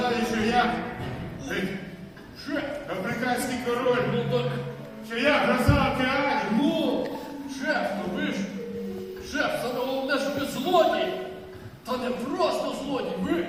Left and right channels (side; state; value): both; identical; correlation 1.00